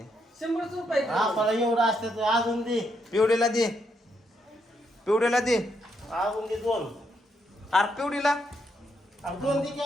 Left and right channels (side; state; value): both; normal; correlation 0.78